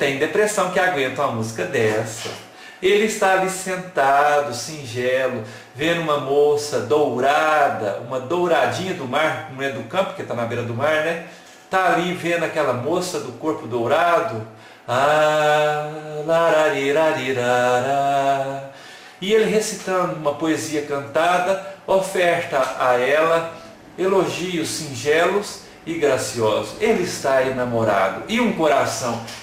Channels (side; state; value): both; identical; correlation 1.00